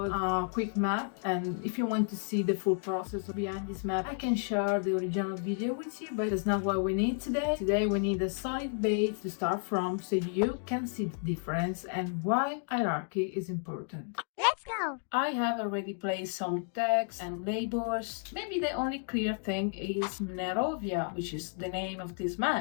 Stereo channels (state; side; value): silent; right; 56 dB below the other